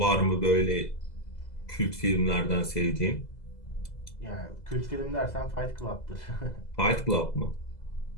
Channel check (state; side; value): late; right; 2.0 ms